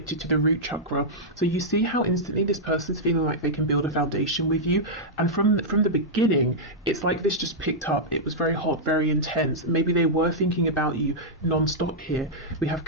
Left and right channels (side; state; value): both; normal; correlation -0.08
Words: to the root chakra. So you see how instantly this person's feeling like they can build a foundation with you, and from the beginning, it's like this just picked up. It was very hot, very intense. Maybe they were thinking about you non-stop here. We have